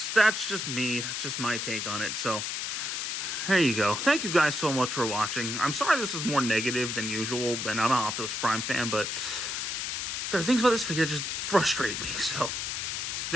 just me. That's just my take on it. So, there you go. Thank you guys so much for watching. I'm sorry this is more negative than usual, and I'm an Optimus Prime fan, but there are things about this figure that just frustrate me. So,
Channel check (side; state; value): left; noise; hiss, 2 dB below the sound